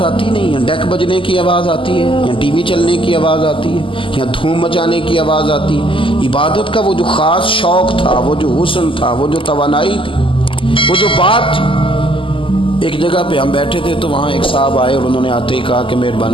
آتی نہیں ہے، ڈیک بجنے کی آواز آتی ہے یا ٹی وی چلنے کی آواز آتی ہے یا دھوم مچانے کی آواز آتی ہے. عبادت کا وہ جو خاص شوق تھا، وہ جو حسن تھا، وہ جو توانائی تھی، وہ جو بات تھی، ایک جگہ پہ ہم بیٹھے تھے تو وہاں ایک صاحب آئے اور انہوں نے آتے ہی کہا کہ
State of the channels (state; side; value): late; right; 0.25 ms